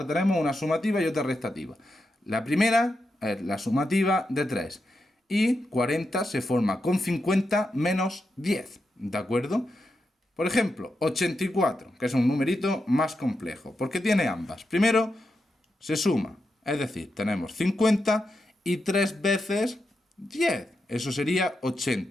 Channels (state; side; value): normal; both; correlation 0.87